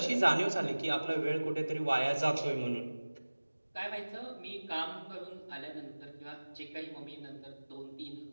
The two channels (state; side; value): inverted; both; correlation -1.00